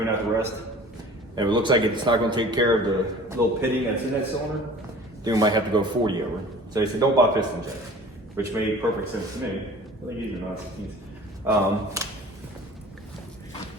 out the rest. And if it looks like it's not going to take care of the little pitting that's in that cylinder, then we might have to go 40 over. So he said, don't buy piston jet, which made perfect sense to me. I think these are not.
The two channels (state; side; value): normal; both; correlation 0.44